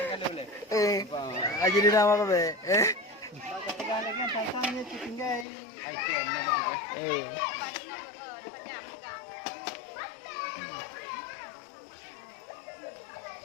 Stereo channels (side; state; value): right; drops out; at 5.5 s